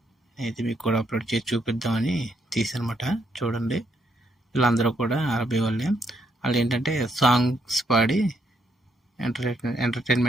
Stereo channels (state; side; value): normal; both; correlation 0.75